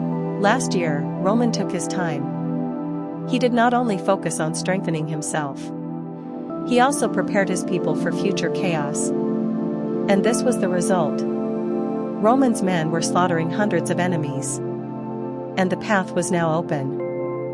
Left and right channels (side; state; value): both; identical; correlation 1.00